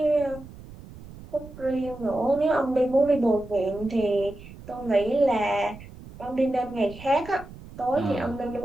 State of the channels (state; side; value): noise; right; rumble, 17 dB below the sound